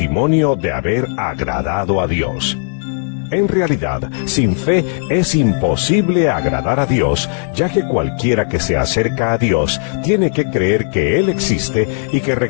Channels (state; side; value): silent; right; digital silence